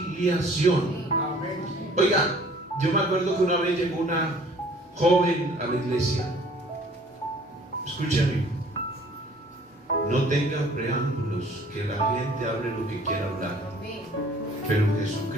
Oiga, yo me acuerdo que una vez llegó una joven a la iglesia. Escúchame, no tengan preámbulos, que la gente hable lo que quiera hablar, pero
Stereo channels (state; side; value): normal; both; correlation 0.54